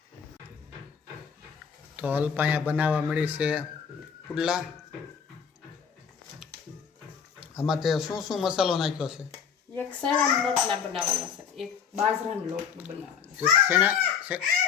તો અલ્પાયા બનાવવા મળી છે પુડલા. આમાં તે શું શું મસાલો નાખ્યો છે? એક શેણાના લોટના બનાવવાના છે, એક બાજરાના લોટનું બનાવવાનું.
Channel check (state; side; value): quieter; right; 7.1 dB